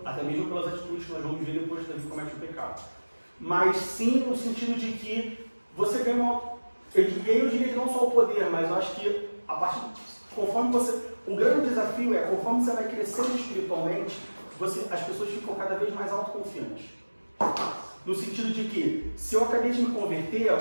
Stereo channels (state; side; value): inverted; both; correlation -1.00